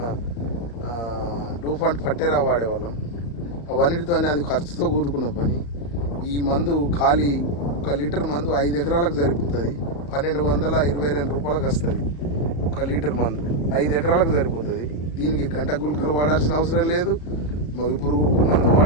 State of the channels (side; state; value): right; late; 35 ms